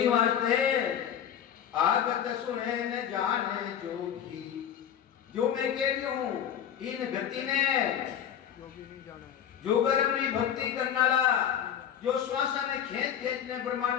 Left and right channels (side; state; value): right; quieter; 9.3 dB